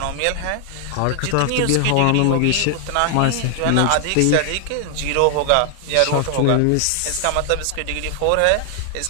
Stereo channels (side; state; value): both; different; correlation 0.00